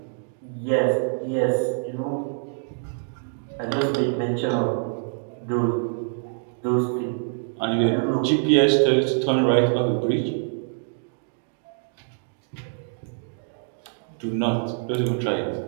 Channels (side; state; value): left; silent; digital silence